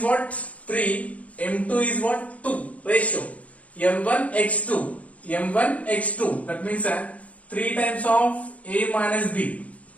what? 3, m2 is what? 2, ratio. m1 x2, m1 x2, that means 3 times of a minus b,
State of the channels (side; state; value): right; late; 0.067 ms